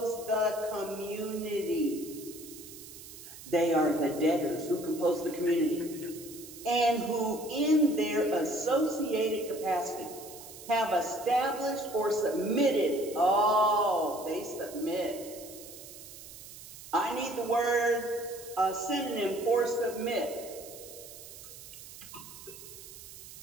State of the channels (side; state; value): right; noise; hiss, 15 dB below the sound